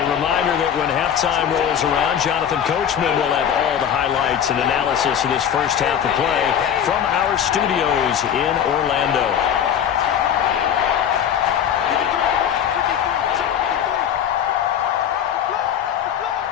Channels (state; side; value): quieter; right; 9.0 dB